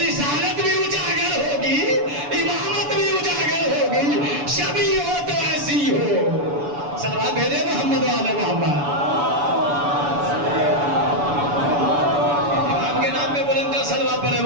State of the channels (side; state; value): left; late; 7.0 ms